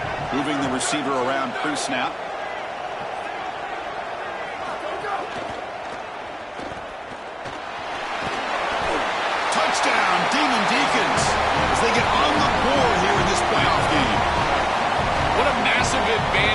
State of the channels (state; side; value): identical; both; correlation 1.00